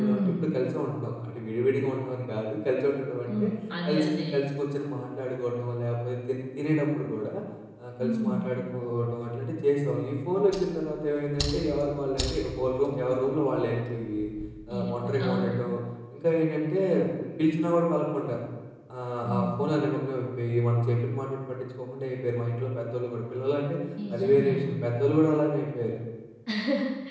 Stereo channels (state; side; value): identical; both; correlation 1.00